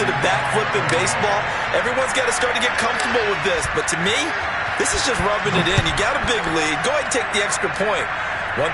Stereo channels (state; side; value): identical; both; correlation 1.00